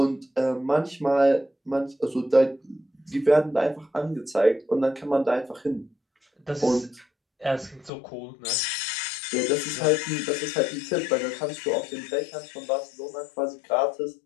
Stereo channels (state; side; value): drops out; right; at 7.9 s